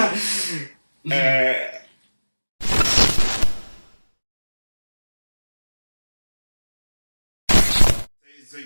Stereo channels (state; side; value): inverted; both; correlation -1.00